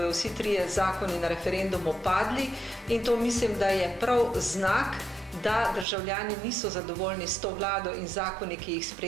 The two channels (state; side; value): drops out; left; at 5.9 s